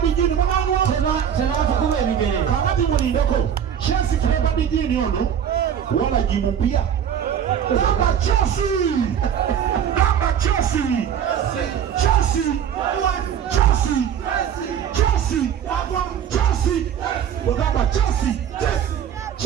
dijini mwananwa teba tukube bigere kakati mulindeko chesi flavor dijini ono wala jimu pia kama chesi kama chesi wakamba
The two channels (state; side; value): quieter; left; 8.8 dB